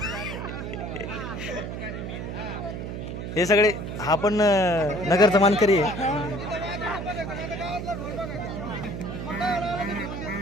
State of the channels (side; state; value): right; noise; hum, 6 dB below the sound